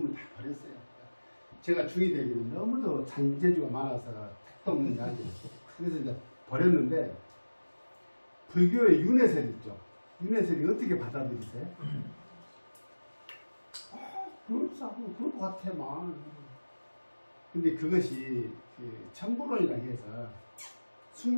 다 버렸어요. 제가 중이 되기는 너무도 잔재주가 많아서 택도 없는 자리예요. 그래서 이제 버렸는데 불교의 윤회설 있죠. 윤회설이 어떻게 받아들이세요? 그렇다고 그럴 것 같아만. 근데 그것이 그 천부론이라고 해서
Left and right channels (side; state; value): both; inverted; correlation -1.00